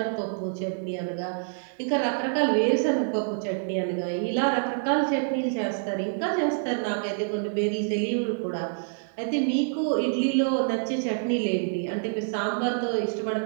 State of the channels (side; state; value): left; silent; digital silence